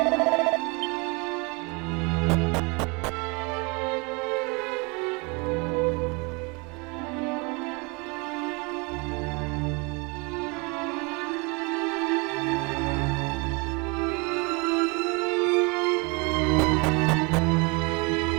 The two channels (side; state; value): left; quieter; 29.7 dB